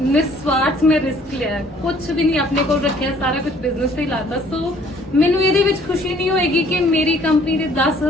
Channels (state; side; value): normal; both; correlation 0.58